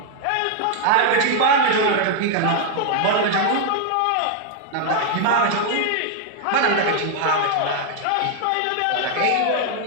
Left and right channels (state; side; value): different; both; correlation 0.00